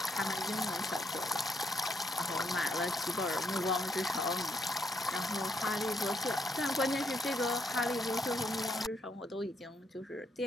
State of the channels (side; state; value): both; normal; correlation 0.75